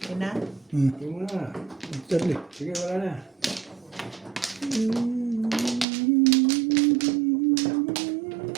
na? Sige mo na. Charlie. Sige, wala na.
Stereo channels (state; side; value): drops out; left; at 5.9 s